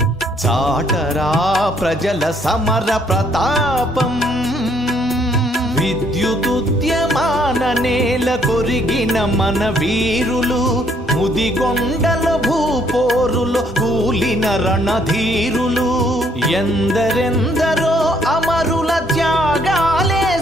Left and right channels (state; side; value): normal; both; correlation 0.67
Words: చాటరా ప్రజల సమర ప్రతాపం విద్యుదుద్యమాన నేల కొరిగిన మన వీరులు ముదిగొండల భూపోరులో కూలిన రణధీరులు ఎందరెందరో అమరుల త్యాగాలే